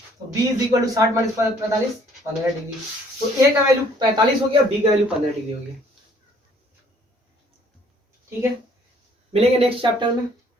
तो B is equal to 60 minus 45 15 degree, तो ए का वैल्यू 45 हो गया, बी का वैल्यू 15 डिग्री हो गया, ठीक है। मिलेंगे नेक्स्ट चैप्टर में,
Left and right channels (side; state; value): both; normal; correlation 0.60